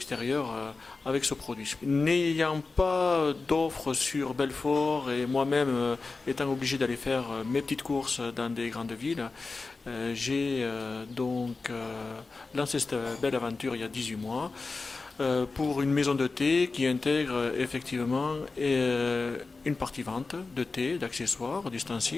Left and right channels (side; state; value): right; quieter; 3.9 dB